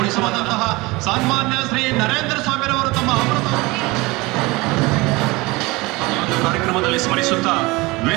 ಸನ್ಮಾನ್ಯ ಶ್ರೀ ನರೇಂದ್ರ ಸ್ವಾಮಿರವರು ತಮ್ಮ ಅಮೃತ ಈ ಒಂದು ಕಾರ್ಯಕ್ರಮದಲ್ಲಿ ಸ್ಮರಿಸುತ್ತಾ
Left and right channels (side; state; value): left; quieter; 23.0 dB